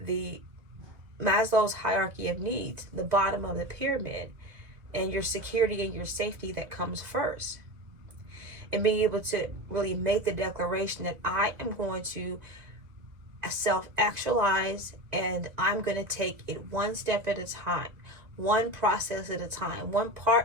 the Maslow's hierarchy of needs, the bottom of the pyramid, and your security and your safety that comes first. And being able to really make the declaration that I am going to self-actualize, and I'm going to take it one step at a time, one process at a time, one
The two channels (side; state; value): left; late; 1.9 ms